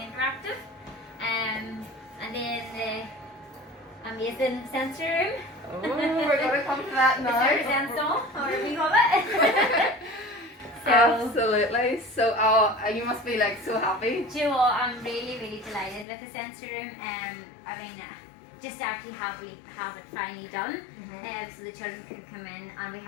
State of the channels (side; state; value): right; drops out; at 16.1 s